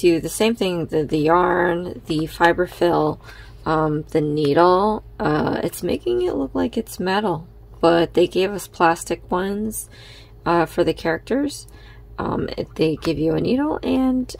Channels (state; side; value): identical; both; correlation 1.00